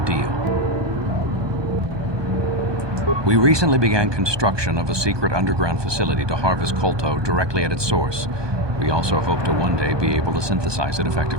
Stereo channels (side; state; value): left; late; 1.2 ms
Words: deal. We recently began construction of a secret underground facility to harvest Kolto directly at its source. We also hope to one day be able to synthesize it